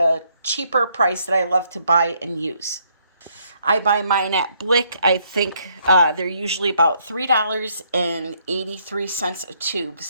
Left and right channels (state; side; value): inverted; both; correlation -0.70